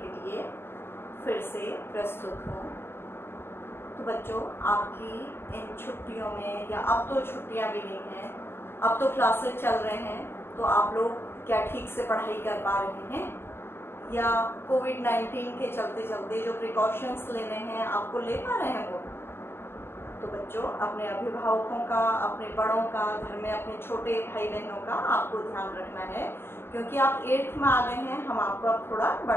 लिए फिर से प्रस्तुत हूँ। तो बच्चों, आपकी इन छुट्टियों में, या अब तो छुट्टियाँ भी नहीं हैं, अब तो क्लासेस चल रहे हैं, तो आप लोग क्या ठीक से पढ़ाई कर पा रहे हैं, या कोविड-19 के चलते चलते जो प्रिकॉशंस लेने हैं आपको ले पा रहे हैं वो? तो बच्चों, अपने अभिभावकों का, अपने बड़ों का, घर में अपने छोटे भाई बहनों का आपको ध्यान रखना है, क्योंकि आप 8th में आ गए हैं, हम आपको अब थोड़ा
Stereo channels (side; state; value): right; late; 0.11 ms